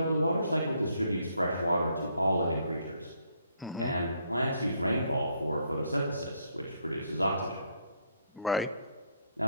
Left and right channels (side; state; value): both; inverted; correlation -0.70